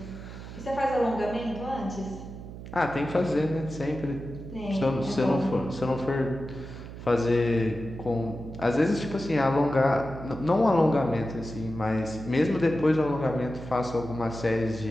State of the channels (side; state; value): right; noise; hum, 12 dB below the sound